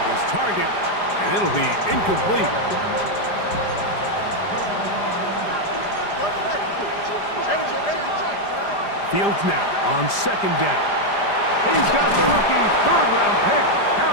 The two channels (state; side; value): late; right; 5.0 ms